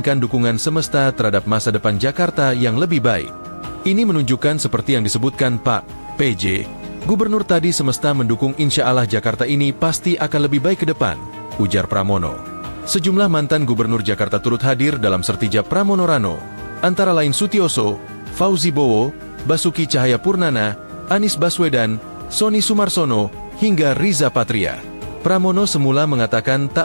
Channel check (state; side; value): inverted; both; correlation -1.00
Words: dukungan semesta terhadap masa depan Jakarta yang lebih baik. Ini menunjukkan seperti yang disebutkan Pak PJ, gubernur tadi semesta mendukung insya Allah Jakarta ini pasti akan lebih baik ke depan, ujar Pramono. Sejumlah mantan gubernur Jakarta turut hadir dalam sertijab Pramono Rano, antara lain Sutioso, Fauzi Bowo, Basuki Cahayapurnama, Anies Baswedan, Sony Sumarsono, hingga Riza Patria. Pramono semula mengatakan tak